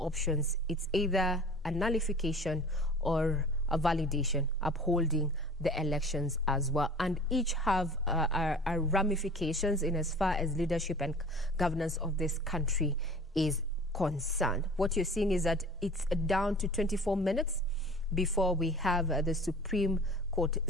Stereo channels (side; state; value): both; normal; correlation 0.43